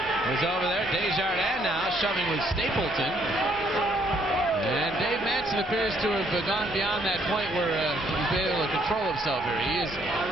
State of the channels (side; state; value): both; normal; correlation 0.68